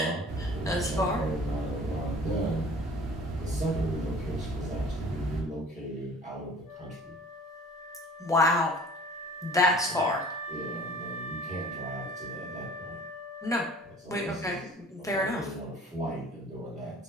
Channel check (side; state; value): both; normal; correlation 0.47